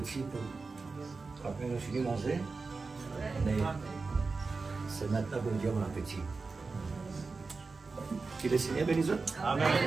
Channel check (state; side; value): quieter; left; 4.1 dB